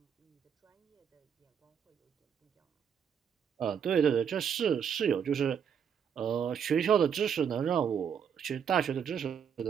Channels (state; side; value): quieter; left; 7.7 dB